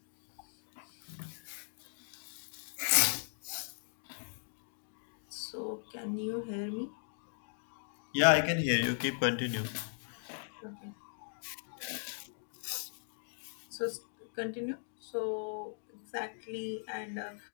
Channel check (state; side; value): silent; right; digital silence